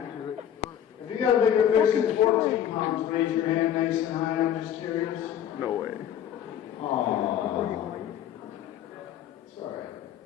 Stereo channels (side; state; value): right; quieter; 10.0 dB